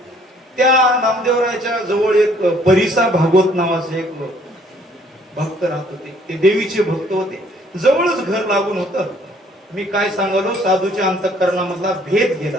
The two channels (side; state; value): both; normal; correlation 0.61